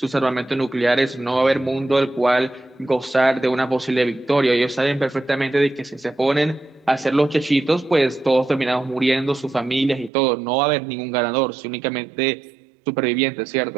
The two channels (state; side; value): drops out; left; at 10.1 s